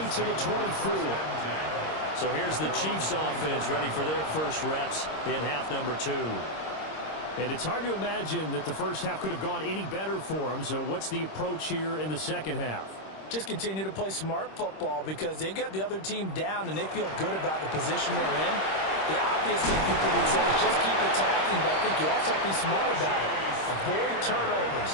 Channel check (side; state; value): right; late; 26 ms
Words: the 24. So here's the Chiefs offense ready for their first reps in half number 2. And it's hard to imagine that the first half could have gone any better for them. So what's the approach here in the second half? Just continue to play smart football because they got the other team down and they feel good about the position they're in. The obvious thing people would say is just keep attacking, but I think you also have to be smart about it. Avoid turnovers.